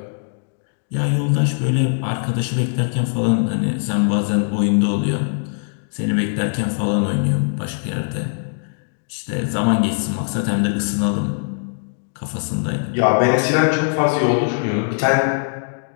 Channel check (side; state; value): right; silent; digital silence